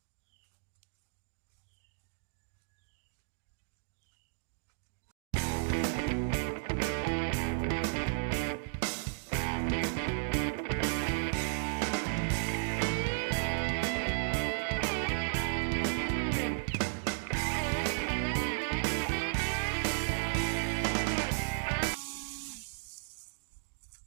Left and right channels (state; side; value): silent; left; digital silence